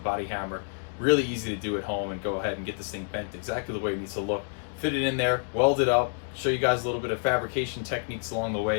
hammer. Really easy to do at home, and go ahead and get this thing bent exactly the way it needs to look. Fit it in there, weld it up, show you guys a little bit of fabrication techniques along the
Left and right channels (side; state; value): right; silent; 59 dB below the other